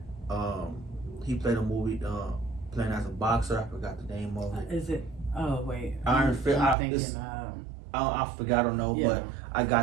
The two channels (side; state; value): left; drops out; at 6.8 s